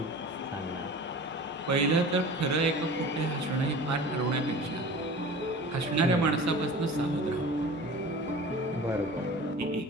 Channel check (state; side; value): normal; both; correlation 0.38